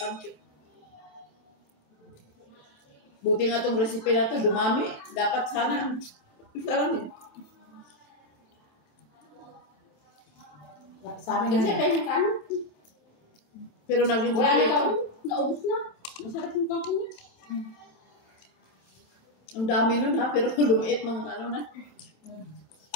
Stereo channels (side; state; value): right; late; 27 ms